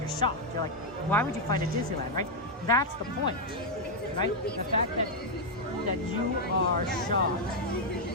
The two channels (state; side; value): normal; both; correlation -0.02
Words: shocked. You're like, why would you fight at Disneyland, right? That's the point, right? The fact that you are shocked,